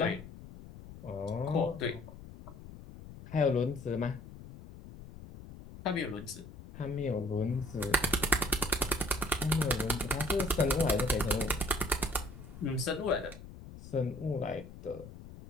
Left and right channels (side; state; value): left; noise; rumble, 15 dB below the sound